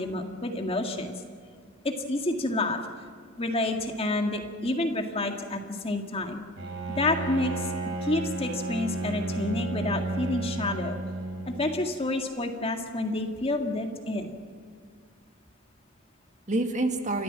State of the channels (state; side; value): normal; both; correlation 0.45